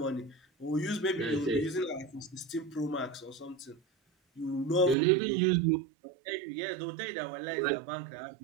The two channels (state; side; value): drops out; left; at 5.0 s